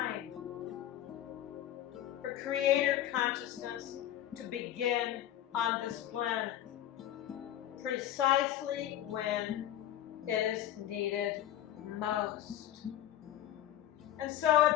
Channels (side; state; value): right; quieter; 12.3 dB